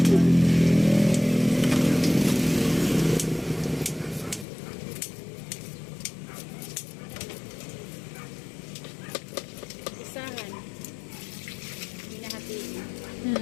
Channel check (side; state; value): right; drops out; at 4.5 s